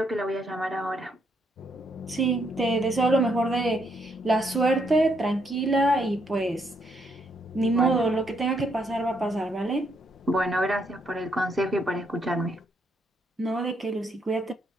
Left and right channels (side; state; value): both; normal; correlation 0.74